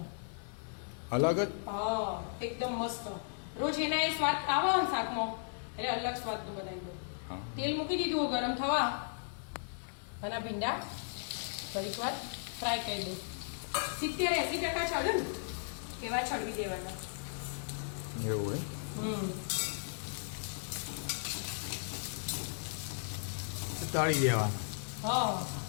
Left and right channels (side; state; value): right; silent; digital silence